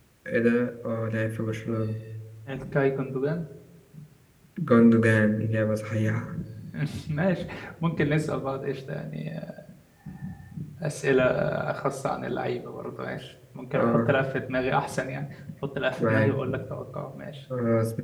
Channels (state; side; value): identical; both; correlation 1.00